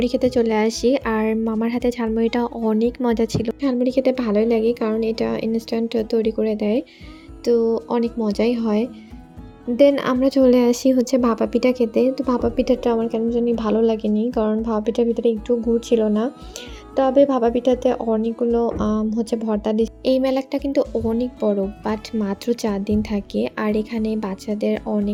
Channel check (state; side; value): identical; both; correlation 1.00